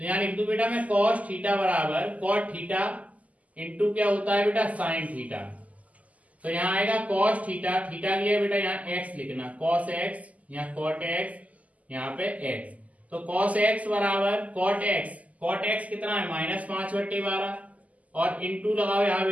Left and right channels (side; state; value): left; late; 0.073 ms